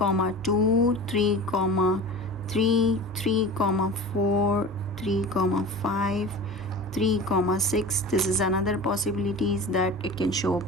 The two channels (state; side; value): normal; both; correlation 0.34